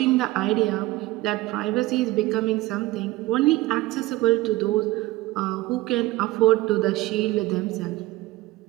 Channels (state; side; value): quieter; left; 18.5 dB